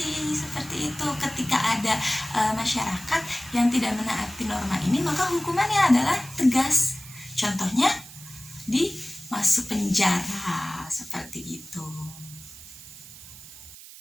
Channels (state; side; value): noise; right; hiss, 17 dB below the sound